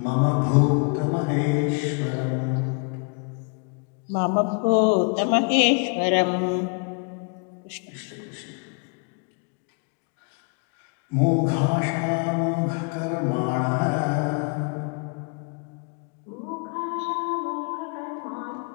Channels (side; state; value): right; quieter; 37.0 dB